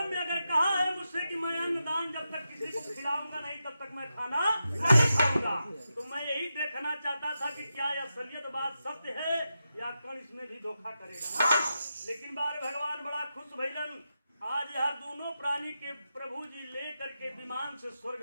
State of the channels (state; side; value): inverted; both; correlation -0.88